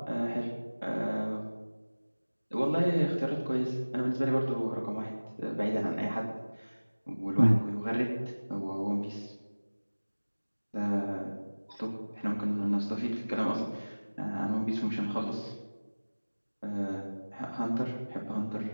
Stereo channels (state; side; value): inverted; both; correlation -1.00